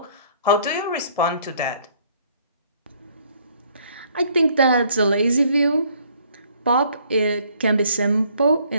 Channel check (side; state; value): both; inverted; correlation -0.63